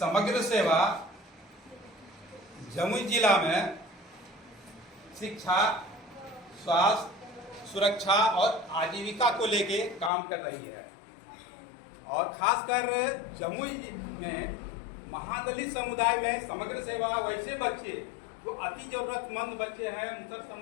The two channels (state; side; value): drops out; right; at 10.1 s